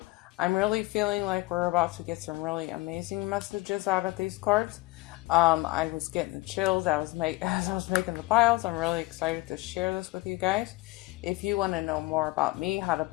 I'm really feeling like we're about to get some really amazing messages out of these cards. I was getting the chills as I was making the piles. I'm really excited to share this with you guys. If you want to know more about me, how to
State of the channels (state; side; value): quieter; right; 21.4 dB